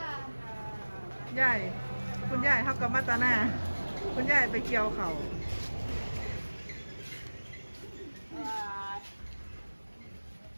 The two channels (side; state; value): both; inverted; correlation -1.00